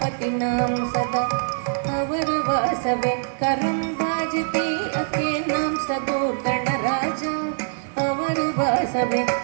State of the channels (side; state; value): left; silent; 57 dB below the other